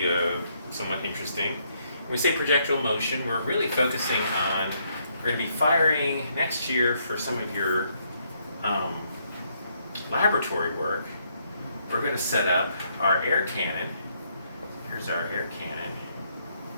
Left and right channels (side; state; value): both; inverted; correlation -0.73